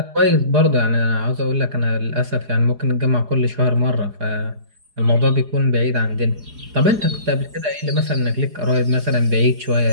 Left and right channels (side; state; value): left; late; 4.8 ms